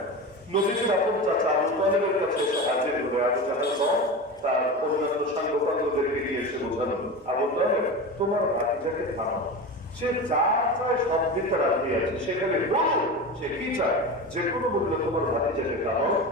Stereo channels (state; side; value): normal; both; correlation 0.26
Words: নবীজির আপন চাচা আবু তালেবের কাছে এসে হাজির হয়ে আবু জাহেল তার অন্যান্য সাংবাদিকদেরকে গিয়ে এসে বোঝানো, আবু তালেব তোমার ভাতিজাকে থামাও, সে যা চায় সব দিতে রাজি আছে, সেখানে বলো সে কি চায়। যে কোনো মূল্যে তোমার ভাতিজাকে খাও।